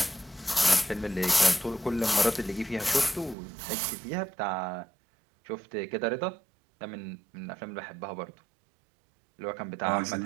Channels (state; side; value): drops out; left; at 3.4 s